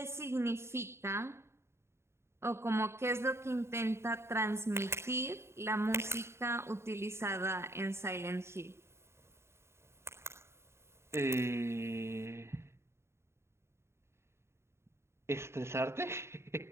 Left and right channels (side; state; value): left; late; 0.13 ms